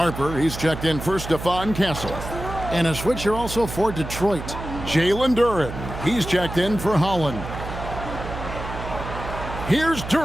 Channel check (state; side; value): noise; right; hum, 8 dB below the sound